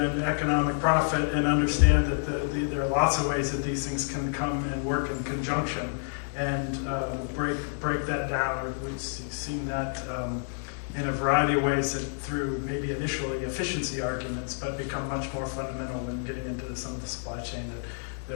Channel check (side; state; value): right; silent; digital silence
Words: economic profit, and understand that there are lots of ways that these things can come and work in conjunction, and break that down. We've seen that in a variety of ways, that through maybe initially efficiency arguments, but become much more fundamental when getting into some of the supply chain, that